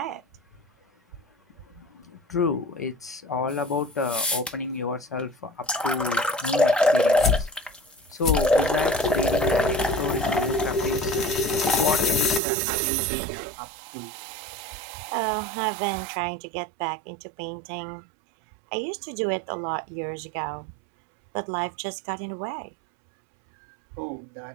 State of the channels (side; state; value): left; drops out; at 12.4 s